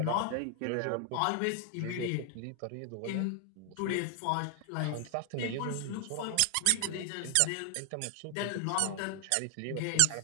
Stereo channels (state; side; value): different; both; correlation 0.00